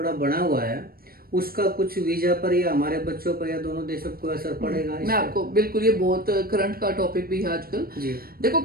बना हुआ है, उसका कुछ वीजा पर या हमारे बच्चों पर या दोनों देशों को असर पड़ेगा? मैं आपको बिल्कुल, ये बहुत करंट का टॉपिक भी है आजकल। देखो,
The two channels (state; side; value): late; left; 0.43 ms